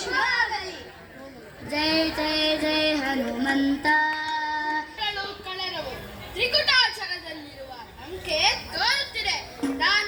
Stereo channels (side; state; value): both; identical; correlation 1.00